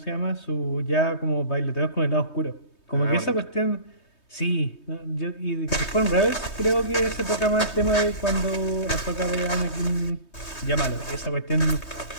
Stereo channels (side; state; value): right; late; 3.2 ms